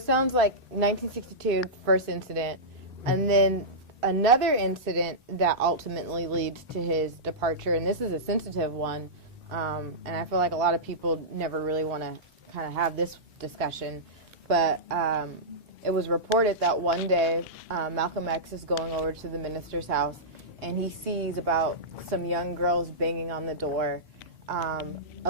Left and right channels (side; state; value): both; normal; correlation -0.14